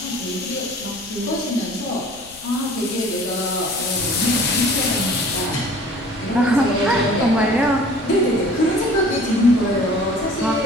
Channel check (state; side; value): noise; left; rumble, 25 dB below the sound